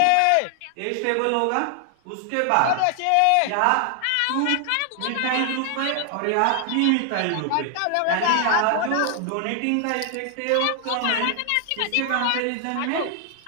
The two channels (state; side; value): different; both; correlation 0.00